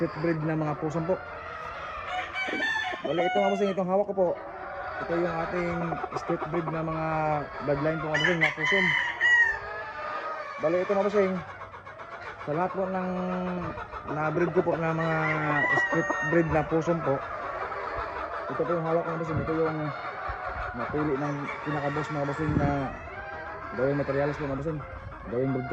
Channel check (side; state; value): both; identical; correlation 1.00